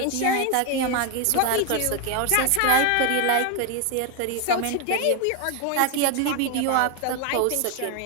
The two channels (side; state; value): both; different; correlation 0.01